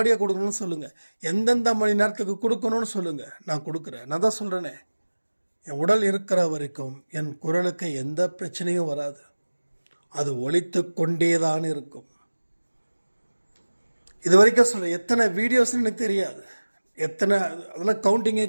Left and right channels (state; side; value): inverted; both; correlation -1.00